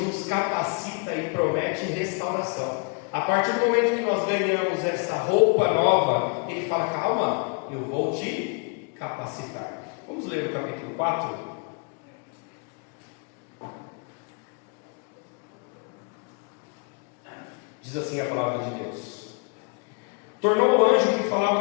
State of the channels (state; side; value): quieter; right; 34.1 dB